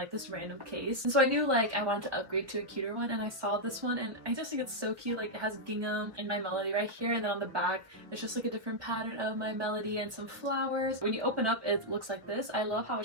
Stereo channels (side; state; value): left; late; 1.3 ms